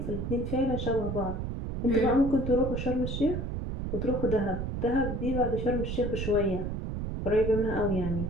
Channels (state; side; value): noise; right; rumble, 3 dB below the sound